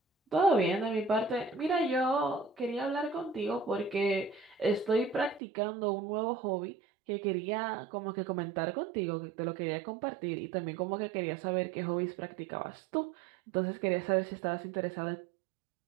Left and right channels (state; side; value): drops out; left; at 5.4 s